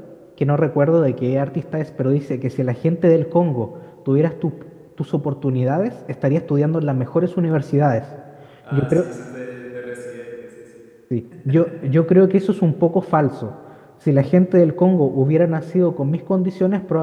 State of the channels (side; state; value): both; identical; correlation 1.00